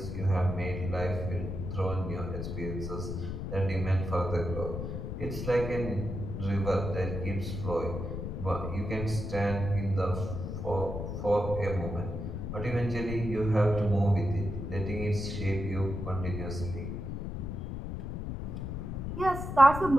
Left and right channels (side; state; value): left; noise; rumble, 5 dB below the sound